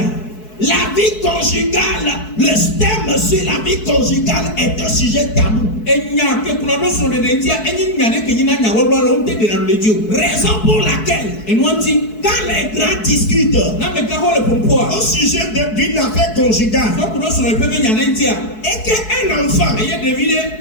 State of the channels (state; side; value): late; right; 4.6 ms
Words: la vie conjugale, le thème sur la vie conjugale est un sujet tabou. Raison pour laquelle, quand les grands discutent au sujet d'une affaire conjugale, et qu'un enfant,